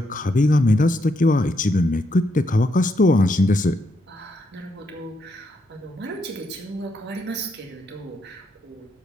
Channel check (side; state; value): both; normal; correlation 0.78